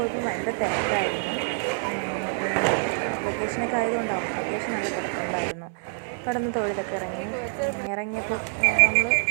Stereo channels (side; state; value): left; silent; 61 dB below the other